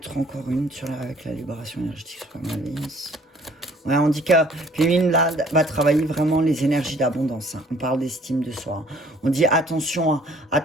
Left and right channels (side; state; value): both; normal; correlation 0.57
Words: encore une avec la libération énergétique sur la malveillance. Ouais, on dit que féminine, là, va travailler vraiment les énergies d'abondance. Hein. On parle d'estime de soi. Hein. On dit attention, hein.